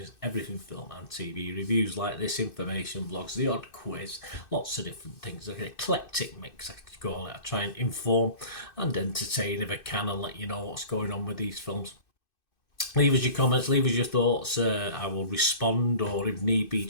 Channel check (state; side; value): late; right; 2.6 ms